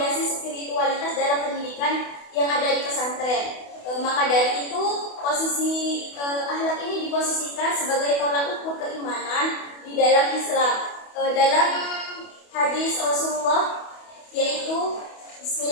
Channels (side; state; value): right; late; 28 ms